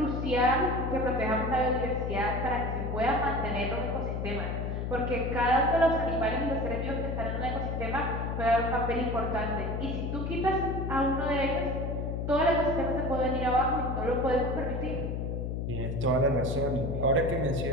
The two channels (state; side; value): noise; left; hum, 2 dB below the sound